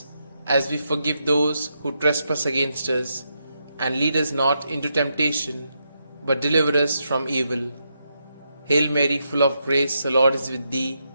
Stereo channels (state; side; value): inverted; both; correlation -0.82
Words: as we forgive those who trespass against us. And lead us not into temptation, but deliver us from evil. Hail Mary, full of grace, the Lord is with thee.